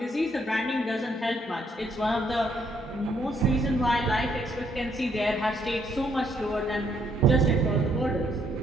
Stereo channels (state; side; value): normal; both; correlation 0.70